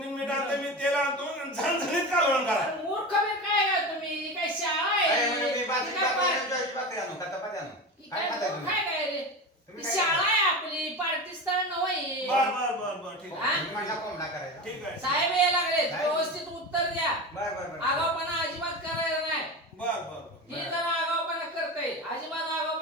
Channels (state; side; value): normal; both; correlation 0.26